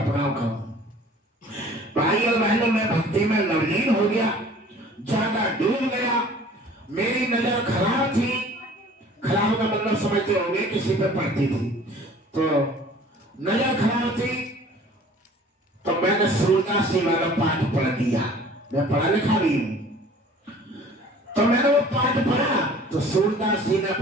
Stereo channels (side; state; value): both; normal; correlation 0.49